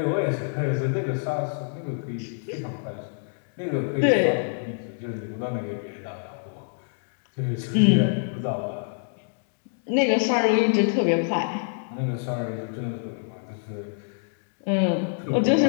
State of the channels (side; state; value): right; silent; digital silence